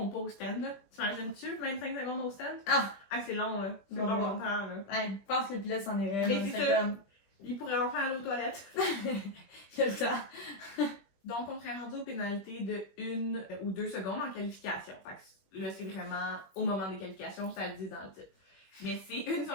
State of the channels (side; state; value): right; late; 21 ms